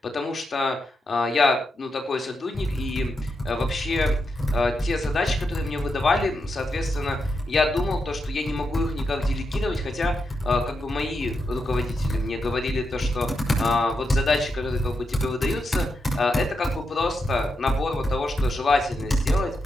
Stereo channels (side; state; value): both; normal; correlation 0.85